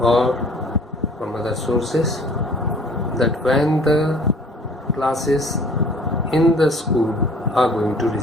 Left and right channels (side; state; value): both; normal; correlation 0.51